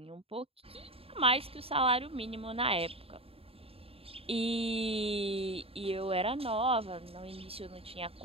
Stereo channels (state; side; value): late; left; 0.28 ms